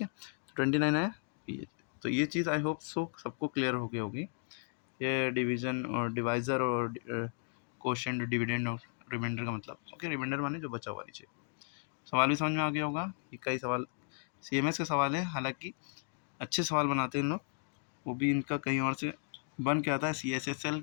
है। 29 आया ये, तो ये चीज़ आई होप सो सबको क्लियर हो गई होगी, ये डिवीज़न और डिवाइज़र और कोशेंट, डिविडेंड और रिमाइंडर का मतलब। ओके, रिमाइंडर माने जो बचा हुआ नीचे। सवाल भी समझ में आ गया होगा, ये कई सवाल CMS के सवाल है, हालांकि अच्छे सवाल बनाते हैं इन लोग, वो भी इनका कहीं और से बन के आता है, CSSL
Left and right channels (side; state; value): right; silent; 54 dB below the other